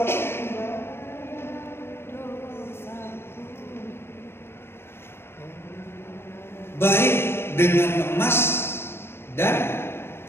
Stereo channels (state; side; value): late; right; 0.12 ms